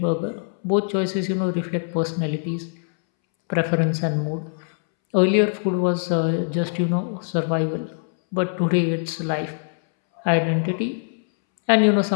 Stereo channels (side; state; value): right; silent; 64 dB below the other